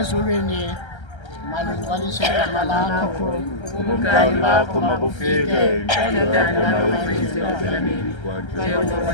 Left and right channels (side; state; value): right; late; 1.3 ms